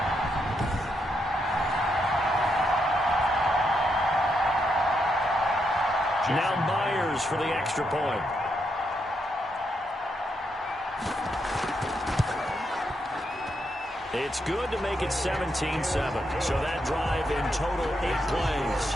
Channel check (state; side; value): normal; both; correlation 0.80